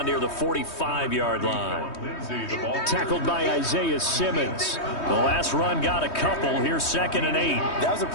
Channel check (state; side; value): late; right; 3.2 ms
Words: near the 45-yard line. Tackled by Isaiah Simmons. The last run got a couple. Here's 2nd and 8. That was a